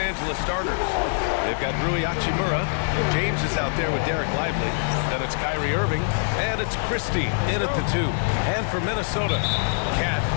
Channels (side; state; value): right; silent; digital silence